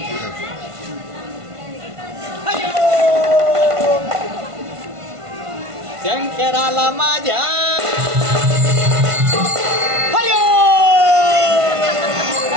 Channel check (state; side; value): late; left; 1.5 ms